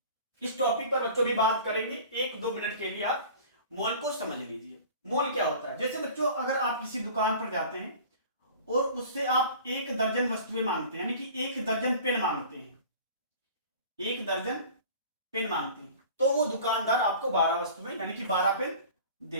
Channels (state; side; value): inverted; both; correlation -0.42